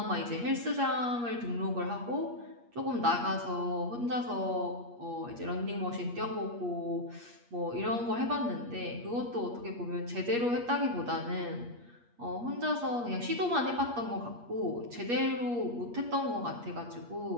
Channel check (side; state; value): left; late; 8.4 ms